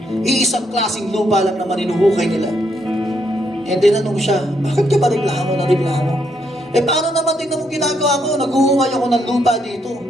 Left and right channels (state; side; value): normal; both; correlation 0.75